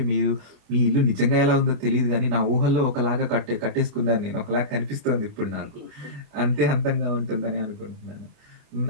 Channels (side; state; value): left; late; 28 ms